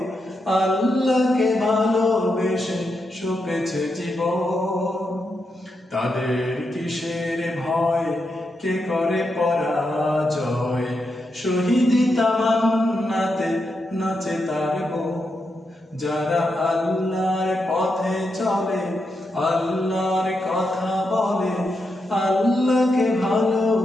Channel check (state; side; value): normal; both; correlation 0.84